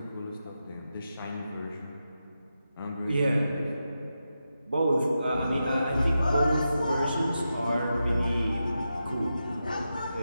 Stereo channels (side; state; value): both; inverted; correlation -0.89